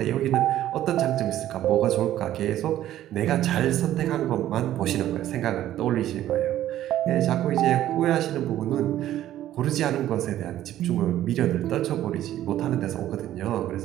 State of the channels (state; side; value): quieter; left; 12.8 dB